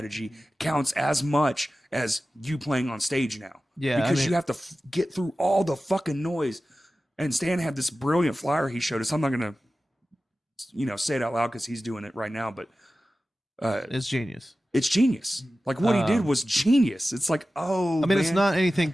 counts as much as you playing on stage now. Yeah, because you have to get through all the fucking noise. And Stan had this brilliant flyer he showed us. I'm not gonna, say it out loud because he's doing it right now. But it's genius. It's genius. Like what he did was genius. It's like, it's not anything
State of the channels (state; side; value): normal; both; correlation 0.95